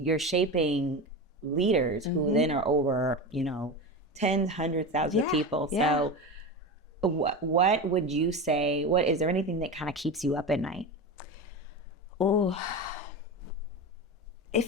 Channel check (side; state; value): both; normal; correlation 0.23